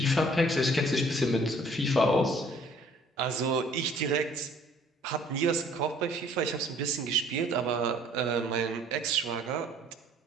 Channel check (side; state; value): both; normal; correlation 0.56